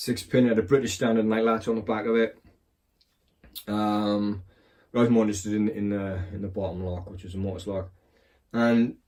had a British standard night latch on the back of it. I was more interested in the bottom lock, which was a Mortice lock. And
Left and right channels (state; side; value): identical; both; correlation 1.00